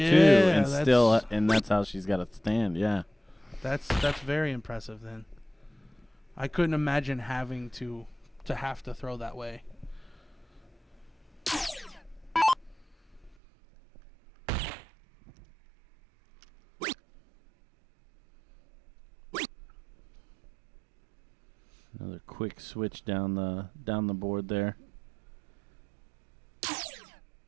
that's and that's how she's got to stand. Yeah. that's very impressive. Then I couldn't imagine having to have to throw that way. Another quick switch down the board there.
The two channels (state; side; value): drops out; left; at 13.4 s